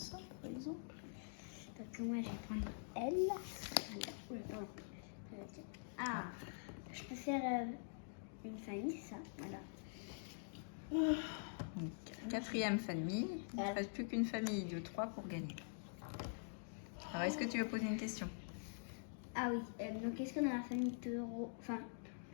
par exemple. Donc moi, je vais prendre elle. Voilà. Oula, pardon. Ah, je peux faire une famille, c'est ça. Voilà. Donc, quatrième famille. Il ne reste plus qu'une famille de 3 pour gagner. Alors, est-ce que tu veux poser une question? Ah oui, donc est-ce que dans la famille taureau, enfin,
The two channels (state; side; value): silent; right; digital silence